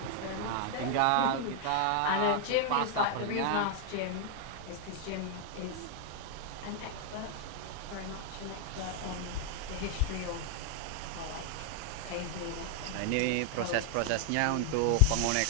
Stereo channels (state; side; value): different; both; correlation 0.00